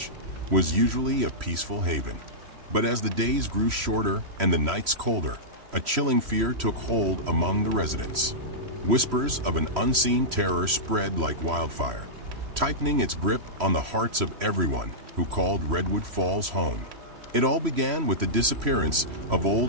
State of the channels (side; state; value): left; late; 3.1 ms